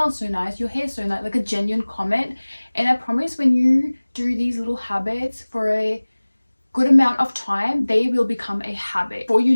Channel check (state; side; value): inverted; both; correlation -1.00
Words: so nice, your hair's so nice, like a genuine comment. And I promise when you do these little habits for a good amount of time, they will become a habit. Before you